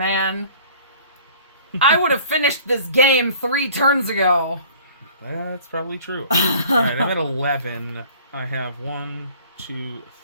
I would have finished this game 3 turns ago. That's probably true. Alright, I'm at 11. I have 1, 2,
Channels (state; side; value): inverted; both; correlation -0.50